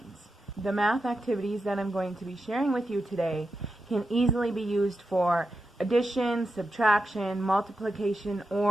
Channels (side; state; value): both; normal; correlation 0.88